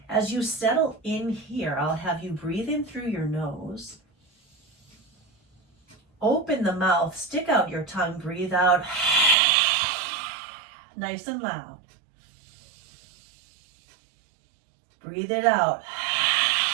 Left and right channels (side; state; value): left; drops out; at 9.3 s